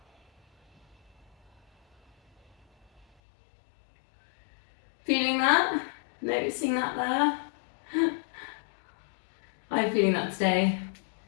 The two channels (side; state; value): right; drops out; at 3.1 s